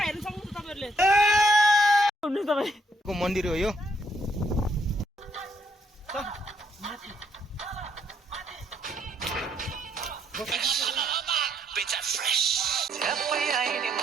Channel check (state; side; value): normal; both; correlation 0.71